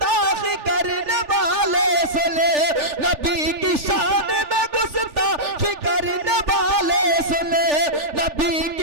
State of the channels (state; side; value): late; left; 3.4 ms